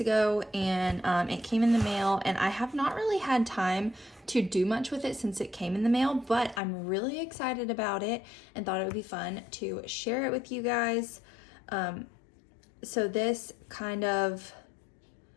and it came in the mail, and I have not really had time to do much with it since it came in the mail, but I'm really excited about it and thought it would be fun to share it with you guys. So this kind of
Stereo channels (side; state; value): right; drops out; at 6.6 s